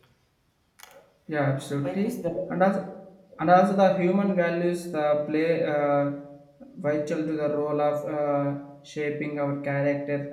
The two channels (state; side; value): identical; both; correlation 1.00